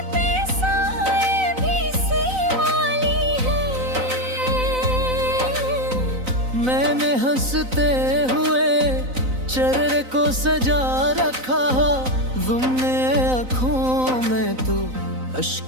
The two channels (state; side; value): late; left; 3.9 ms